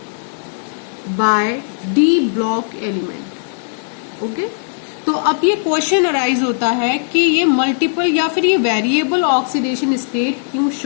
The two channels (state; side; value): silent; right; digital silence